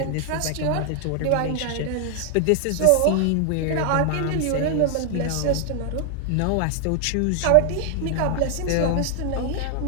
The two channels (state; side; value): different; both; correlation 0.00